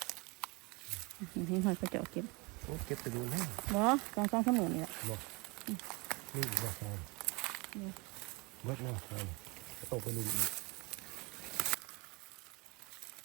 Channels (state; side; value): quieter; left; 27.2 dB